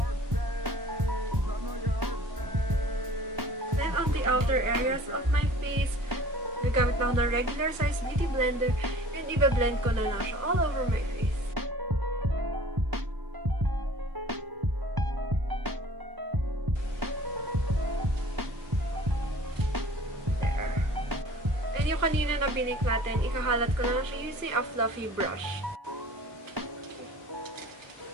Then on the outer areas of my face, gagamit lang ng regular size beauty blender and i-blend ko na lang siya all over my face. And yung kanina na binik natin, ikahalat ko na lang siya using a fluffy brush.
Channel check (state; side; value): late; left; 1.1 ms